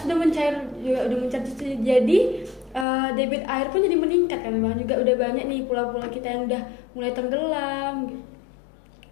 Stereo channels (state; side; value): drops out; right; at 2.9 s